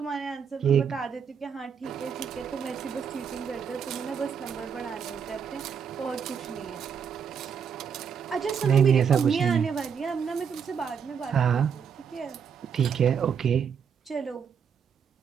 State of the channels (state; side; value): quieter; left; 7.1 dB